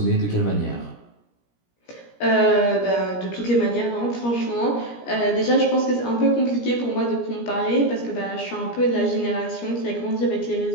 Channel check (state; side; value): late; right; 17 ms